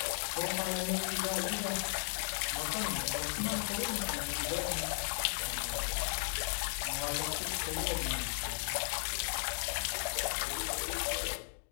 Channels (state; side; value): silent; right; digital silence